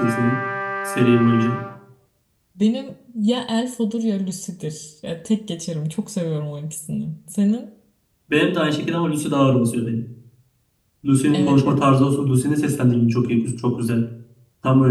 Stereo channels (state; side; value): identical; both; correlation 1.00